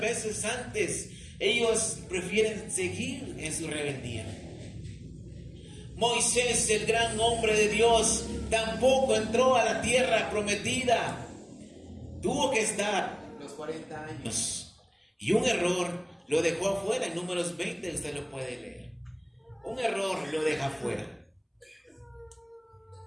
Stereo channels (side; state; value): both; identical; correlation 1.00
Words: antes. Ellos prefieren seguir en su rebeldía. Moisés, el gran hombre de Dios, tampoco entró a la tierra prometida. Tuvo que estar los 40 años. Y un error lo dejó afuera. En Números 20 usted lo puede leer. Un error lo deja afuera.